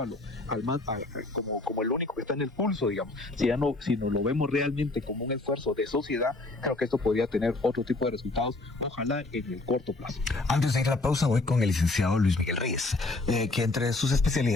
como el único que está en el pulso, digamos, si no lo vemos realmente como un esfuerzo de sociedad, creo que esto podría tener otro tipo de resultados, ojalá en el corto plazo. Antes de ir a la pausa, voy con el licenciado Luis Miguel Reyes, que entre sus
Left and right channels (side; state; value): right; quieter; 3.1 dB